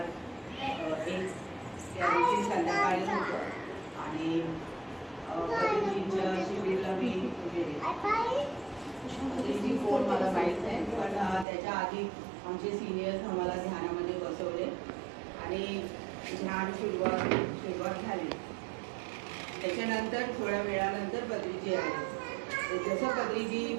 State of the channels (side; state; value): left; drops out; at 11.5 s